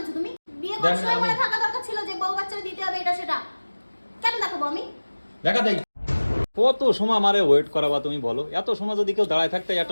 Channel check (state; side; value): inverted; both; correlation -1.00